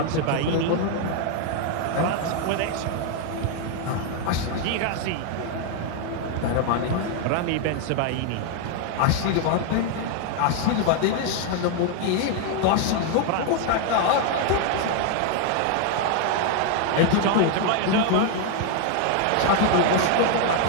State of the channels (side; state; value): both; different; correlation 0.00